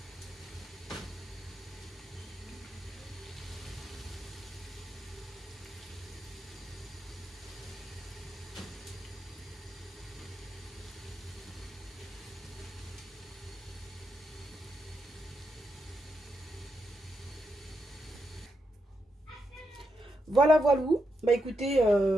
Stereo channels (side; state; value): both; normal; correlation 0.83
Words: Voilà, voilà. Bah écoutez,